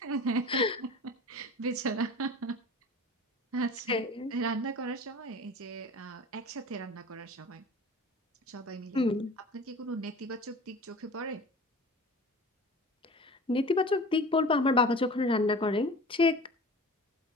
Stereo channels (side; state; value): both; normal; correlation 0.38